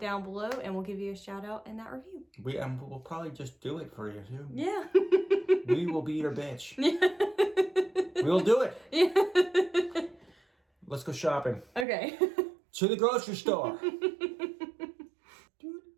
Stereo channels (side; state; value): left; drops out; at 11.9 s